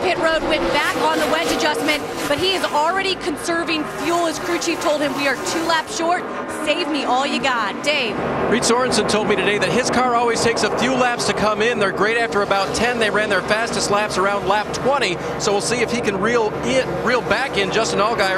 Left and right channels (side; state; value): both; identical; correlation 1.00